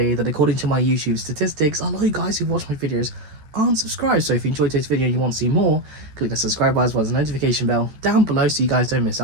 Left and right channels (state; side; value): late; left; 13 ms